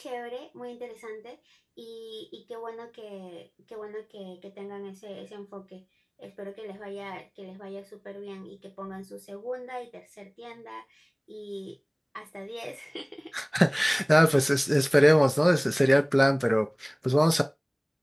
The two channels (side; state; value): both; identical; correlation 1.00